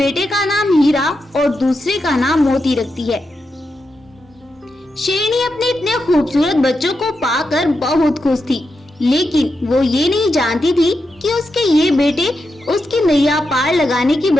का नाम हीरा और दूसरे का नाम मोती रखती है। शेरनी अपने इतने खूबसूरत बच्चों को पाकर बहुत खुश थी, लेकिन वो ये नहीं जानती थी कि उसके ये बेटे उसकी नैया पार लगाने की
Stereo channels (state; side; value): normal; both; correlation 0.86